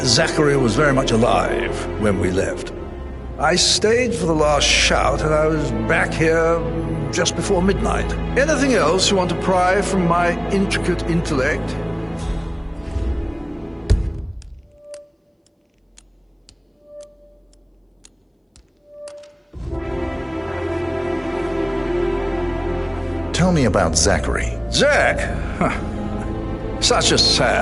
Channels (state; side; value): identical; both; correlation 1.00